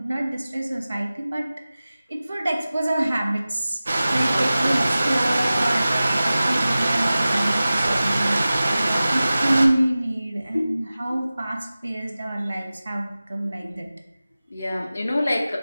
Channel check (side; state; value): both; inverted; correlation -0.96